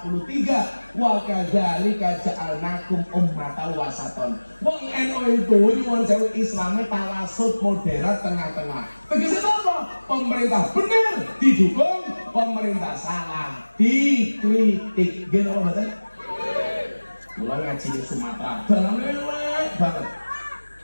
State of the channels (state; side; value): inverted; both; correlation -1.00